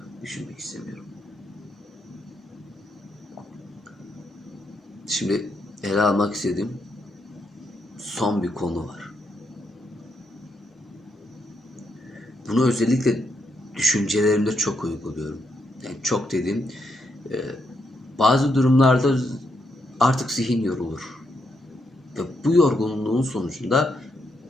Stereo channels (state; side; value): normal; both; correlation 0.79